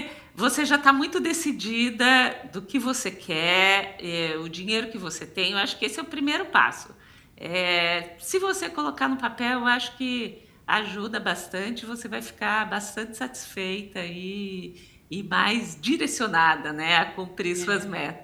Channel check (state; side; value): identical; both; correlation 1.00